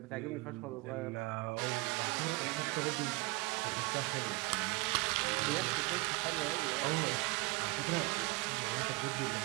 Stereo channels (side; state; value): left; quieter; 24.5 dB